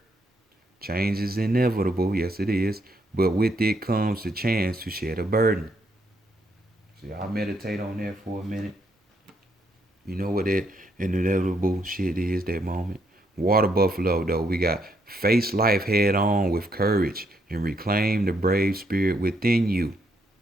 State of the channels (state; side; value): normal; both; correlation 0.74